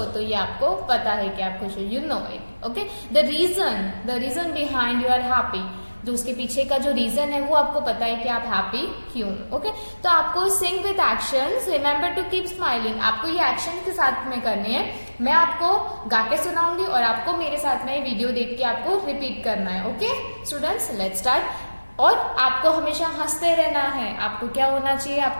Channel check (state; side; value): inverted; both; correlation -1.00